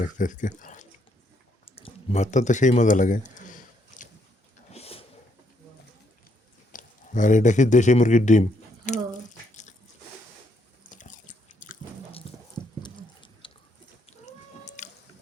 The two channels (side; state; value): both; normal; correlation 0.73